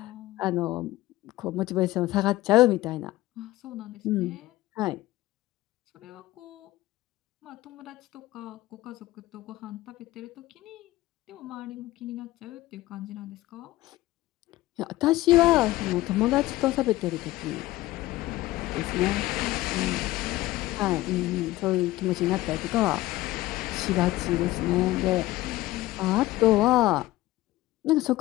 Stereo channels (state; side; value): quieter; right; 17.3 dB